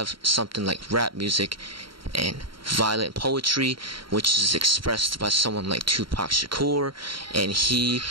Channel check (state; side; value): late; left; 0.73 ms